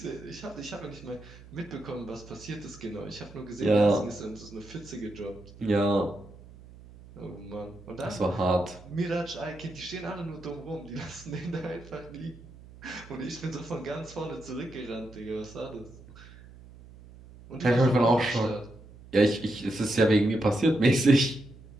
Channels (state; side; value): noise; right; hum, 20 dB below the sound